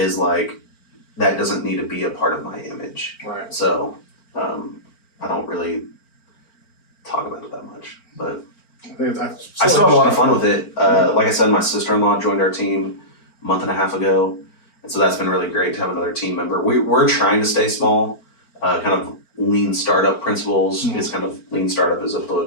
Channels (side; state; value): right; late; 4.4 ms